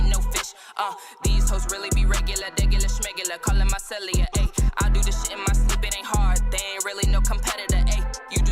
no fish, these hoes really be regular, schmegular, calling my cellular, ayy. I do this shit in my sleep, it ain't hard, they ain't really no competitor, ayy. You do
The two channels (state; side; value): identical; both; correlation 1.00